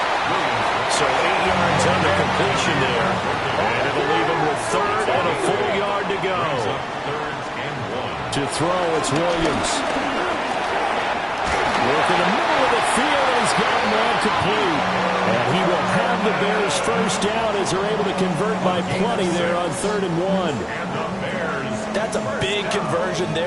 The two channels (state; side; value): identical; both; correlation 1.00